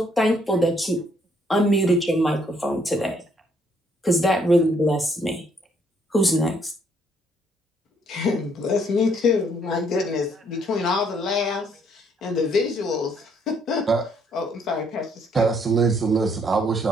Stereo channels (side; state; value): both; normal; correlation 0.68